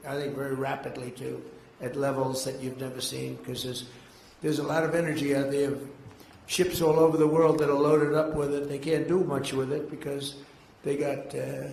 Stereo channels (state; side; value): identical; both; correlation 1.00